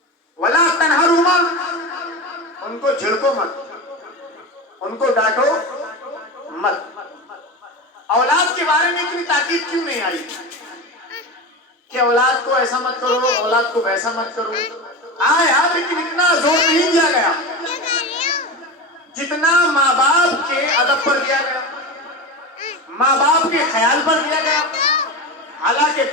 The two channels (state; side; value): normal; both; correlation 0.24